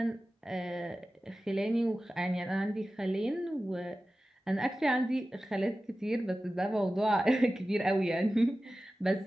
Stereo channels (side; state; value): both; normal; correlation 0.95